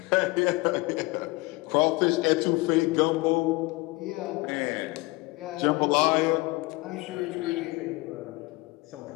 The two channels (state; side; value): quieter; right; 23.5 dB